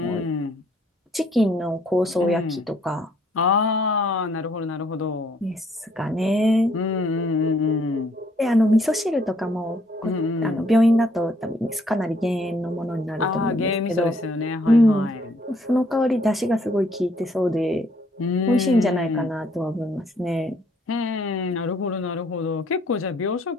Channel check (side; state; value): both; normal; correlation 0.66